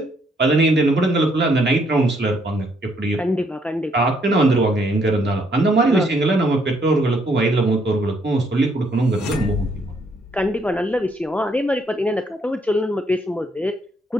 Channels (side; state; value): both; normal; correlation 0.70